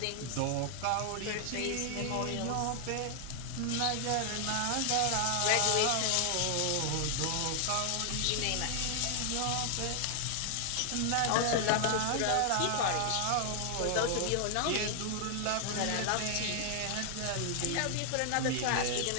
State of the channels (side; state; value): both; different; correlation 0.00